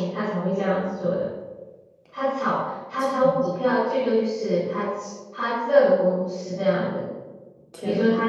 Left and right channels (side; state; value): both; identical; correlation 1.00